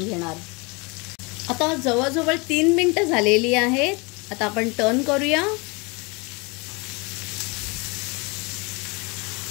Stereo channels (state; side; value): quieter; right; 28.5 dB